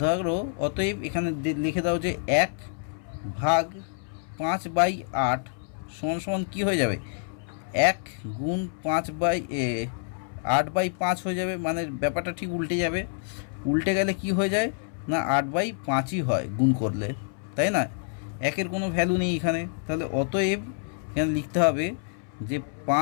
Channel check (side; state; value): right; silent; 60 dB below the other